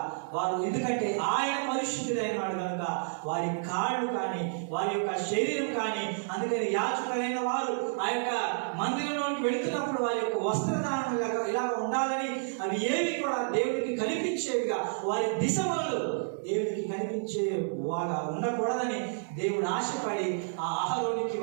వారు, ఎందుకంటే ఆయన పరిశుద్ధుడైన వాడు కనుక వారి కాళ్ళు కానీ వారి యొక్క శరీరం కానీ, అందుకని యాజకులైన వారు ఆ యొక్క మందిరంలోకి వెళుతున్నప్పుడు వారి యొక్క వస్త్రధారణ ఇలా ఉండాలని, అవి ఏవి కూడా దేవుడికి కనిపించేవిగా, వారి దిశలు దేవుడికి కనిపించే వాగా ఉండకూడదని దేవుడు ఆశపడి ఆ అహరోనికి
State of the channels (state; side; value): silent; left; digital silence